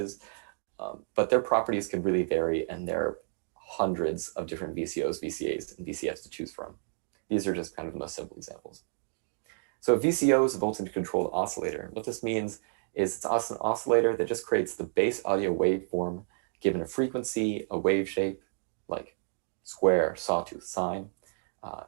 but their properties can really vary, and there are hundreds of different VCOs, VCAs, and VCFs to choose from. These are just kind of the most simple examples. So a VCO is a voltage-controlled oscillator. What this means is it's an oscillator that just creates the base audio waveform given a frequency, a wave shape, like square, sawtooth, sine,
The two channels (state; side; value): silent; left; digital silence